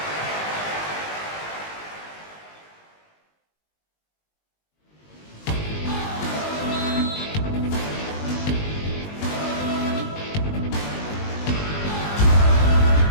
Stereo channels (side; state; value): right; late; 19 ms